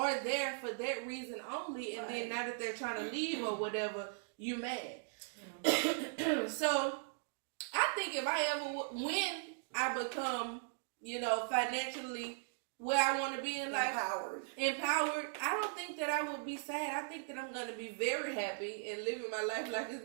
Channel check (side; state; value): left; silent; digital silence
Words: there for that reason only, and then now that they're trying to leave or whatever, you mad. So I think if when I become, financially where I want to be in life, empowered, I don't think that I would be sad. I think that I'm going to be very happy and living my life like